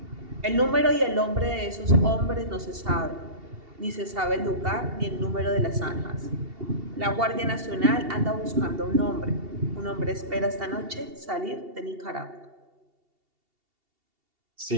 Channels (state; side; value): late; left; 2.7 ms